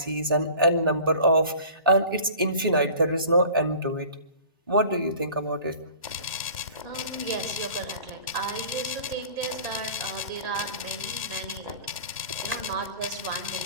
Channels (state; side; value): inverted; both; correlation -0.44